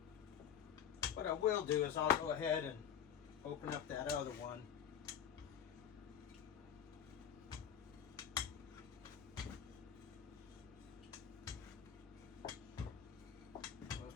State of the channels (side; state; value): right; quieter; 8.7 dB